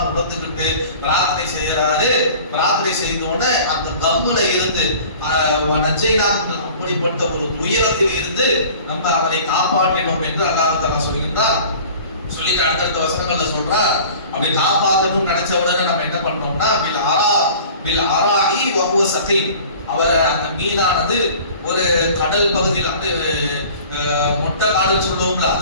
உணர்ந்துகிட்டு பிரார்த்தனை செய்யறாரு. பிரார்த்தனை செய்தோட அந்த கம்முல இருந்து அப்படிப்பட்ட ஒரு துயரத்தில் இருந்து நம்ம அவரை காப்பாற்றினோம் என்று அல்லாஹ் தஆலா சொல்கின்றார். சொல்லிட்டு அடுத்தடுத்த வசனங்கள்ல சொல்றார், அப்படி காப்பாற்றணும்னு நினைச்ச உடனே நம்ம என்ன பண்ணோம்னா பில் அராஇ வஹுவ சகீம், அவர் அந்த மீனானது ஒரு கடல் பகுதியில் வந்து மொட்டை காடுன்னு சொல்லுவோம்ல,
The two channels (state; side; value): inverted; both; correlation -0.45